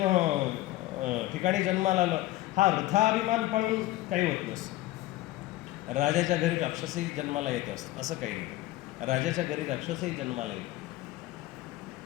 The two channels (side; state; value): right; quieter; 16.5 dB